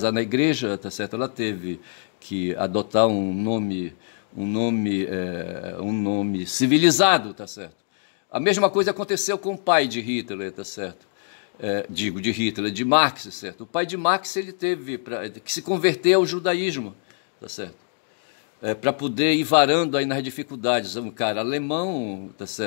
na igreja, tá certo? Ela teve que adotar um nome civilizado, tá certo? A mesma coisa aconteceu com o pai de Hitler, tá certo? De Hitler, de Marx, certo? O pai de Marx, ele teve que se converter ao judaísmo, tá certo? Para poder ir varando aí nas dificuldades. Um cara alemão, tá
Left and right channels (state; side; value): silent; right; 61 dB below the other